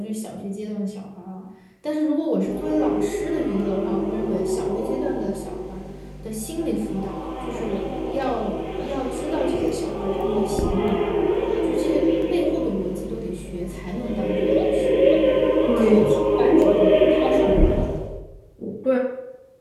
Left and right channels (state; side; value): identical; both; correlation 1.00